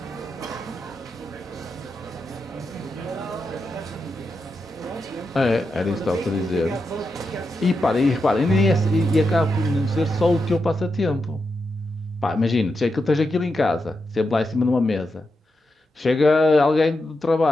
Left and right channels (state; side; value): normal; both; correlation 0.87